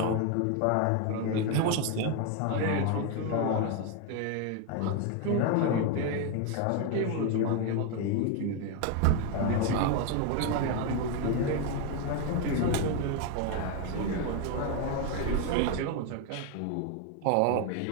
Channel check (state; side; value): different; both; correlation 0.01